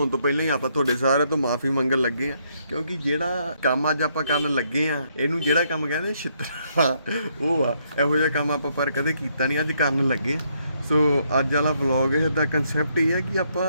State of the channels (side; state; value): both; inverted; correlation -0.73